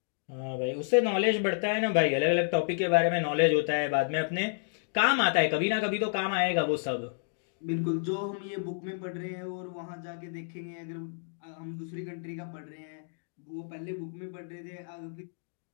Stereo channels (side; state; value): right; silent; digital silence